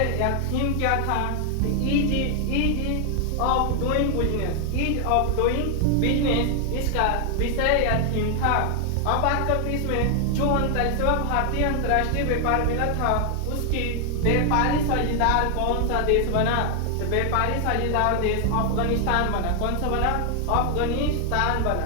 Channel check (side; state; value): both; different; correlation 0.00